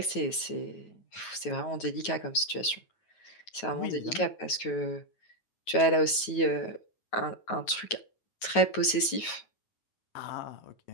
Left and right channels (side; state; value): right; late; 9.3 ms